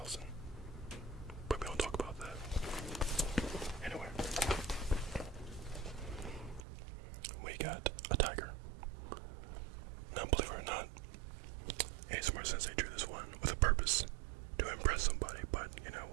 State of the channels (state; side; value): drops out; left; at 6.7 s